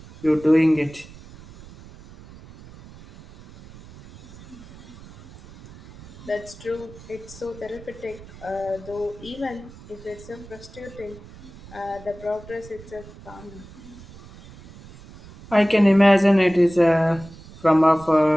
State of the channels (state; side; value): noise; right; rumble, 19 dB below the sound